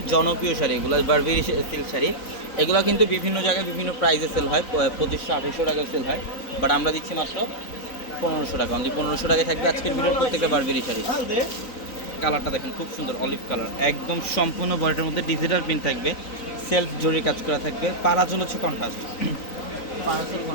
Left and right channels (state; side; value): late; right; 3.9 ms